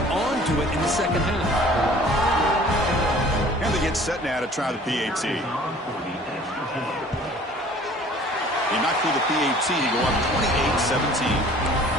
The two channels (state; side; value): normal; both; correlation 0.50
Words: onto it in the second half. And they get set now to try the PAT. They knock through the PAT to go up 28-17.